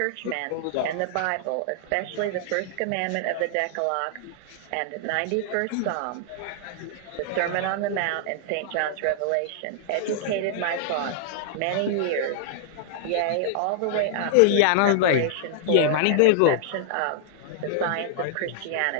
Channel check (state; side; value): different; both; correlation -0.01